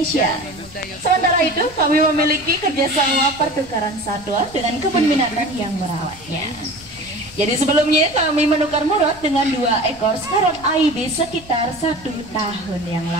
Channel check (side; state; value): left; noise; rumble, 21 dB below the sound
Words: Sementara itu, kami memiliki kerjasama pertukaran satwa dengan kebun binatang yang merawatnya. Jadi sebelumnya kami menukar Murad dengan 2 ekor scarlet ibis sekitar 1 tahun yang